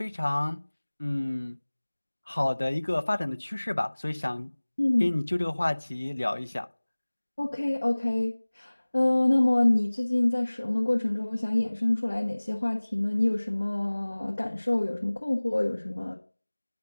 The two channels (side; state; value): both; inverted; correlation -1.00